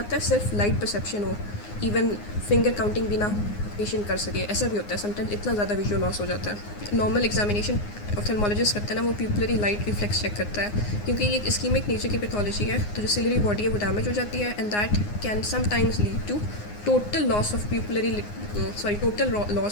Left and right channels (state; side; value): late; right; 9.7 ms